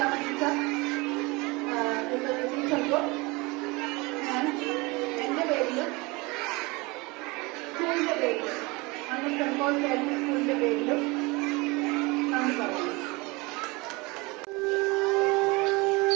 ടീച്ചർക്കും ഞാൻ എന്റെ പേരിലും സ്കൂളിന്റെ പേരിലും അന്ന് സെന്റ് പോൾ കേരള സ്കൂളിന്റെ പേരിലും നന്ദി പറയുന്നു.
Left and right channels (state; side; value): quieter; left; 25.1 dB